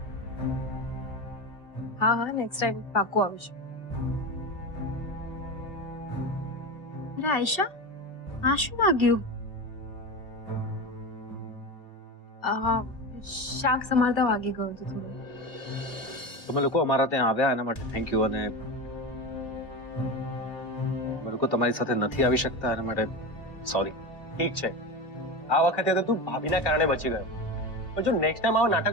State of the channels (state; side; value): late; right; 2.4 ms